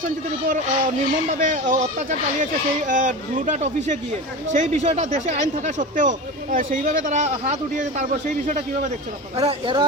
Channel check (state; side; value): normal; both; correlation 0.28